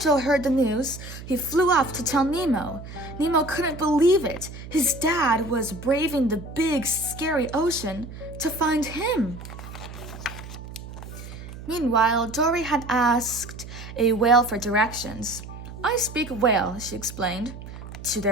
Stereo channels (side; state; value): right; noise; hum, 13 dB below the sound